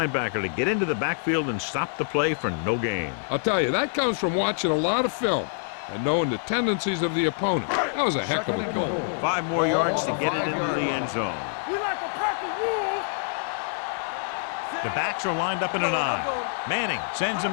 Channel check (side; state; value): right; silent; digital silence